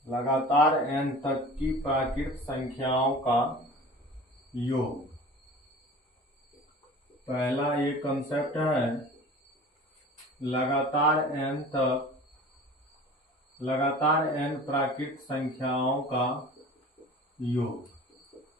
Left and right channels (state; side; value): normal; both; correlation 0.40